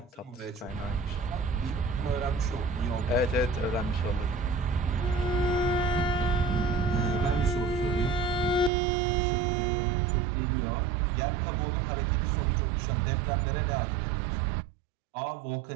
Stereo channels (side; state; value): left; drops out; at 8.7 s